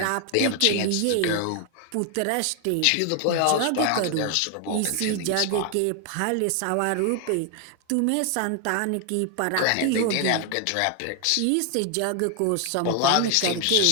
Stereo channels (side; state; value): both; different; correlation 0.01